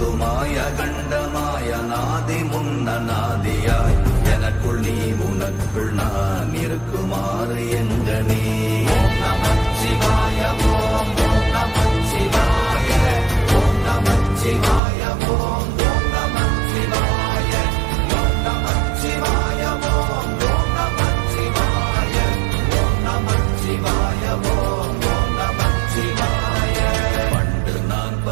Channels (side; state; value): left; drops out; at 14.8 s